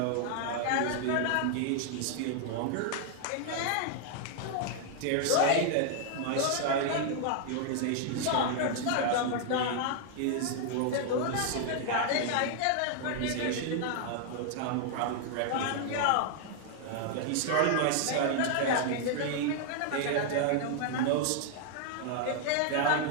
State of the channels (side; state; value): both; different; correlation 0.00